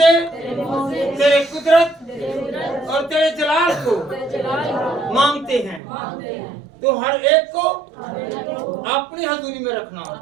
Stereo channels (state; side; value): drops out; left; at 5.8 s